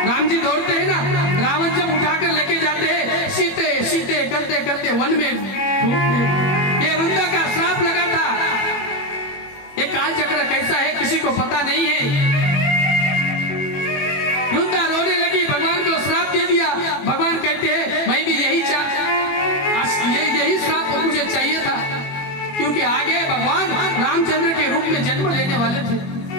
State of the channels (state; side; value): late; right; 21 ms